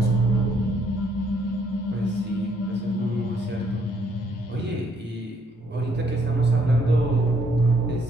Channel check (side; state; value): both; normal; correlation 0.69